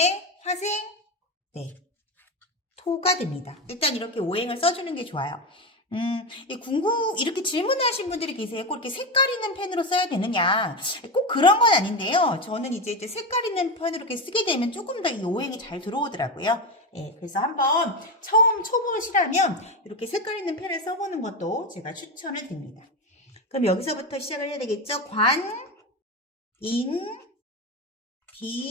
화생, 토가 됩니다. 일단 이렇게 오행을 써주는 게 좋아요. 이렇게 질문하신 분들이 계세요. 꼭 이렇게 색깔 있는 펜으로 써야 되느냐. 꼭 그런 건 아닌데요. 저는 이제 색깔 있는 펜으로 이렇게 쓰게 되면 조금 더 이 오행이 잘 들어오더라고요. 그래서 한번 처음 초보시라면 이렇게 색깔 있는 펜을 써보는 것도 제가 추천을 드립니다. 그럼 여기서부터 시작을 해야 되겠죠? 관, 인,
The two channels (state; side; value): normal; both; correlation 0.16